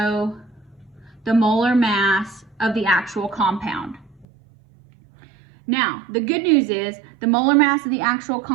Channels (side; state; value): left; drops out; at 4.2 s